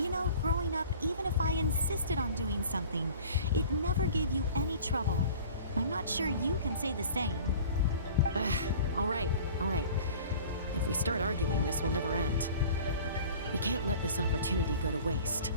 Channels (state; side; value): inverted; both; correlation -0.43